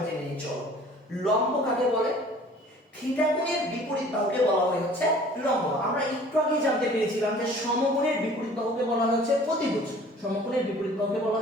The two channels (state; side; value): normal; both; correlation 0.50